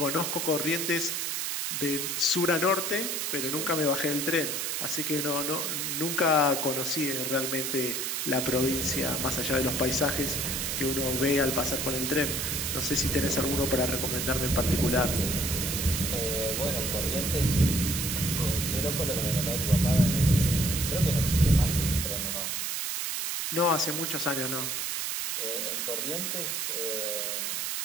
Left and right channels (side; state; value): right; noise; hiss, 1 dB below the sound